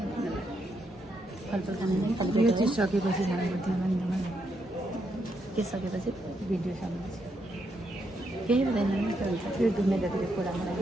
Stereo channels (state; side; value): normal; both; correlation 0.79